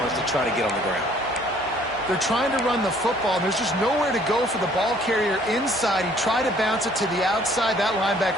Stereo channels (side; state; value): both; normal; correlation 0.59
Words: to try to get on the ground. They're trying to run the football, and there's just nowhere to go for the ball carrier inside. He tried to bounce it to the outside. That